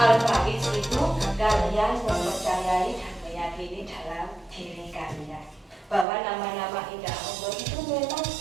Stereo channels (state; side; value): drops out; left; at 6.1 s